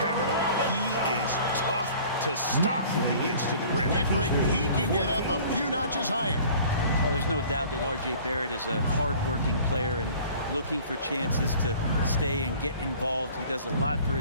he is tough to stop when he gets to the rim. Yeah, Greg, he can get up a few notches higher. Well, there's no doubt that R.J. Barrett is a hard-working player and looking for chances to stay and get involved. He does a lot for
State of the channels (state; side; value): inverted; both; correlation -0.49